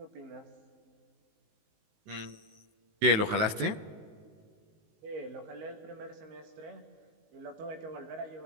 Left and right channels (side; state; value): left; late; 19 ms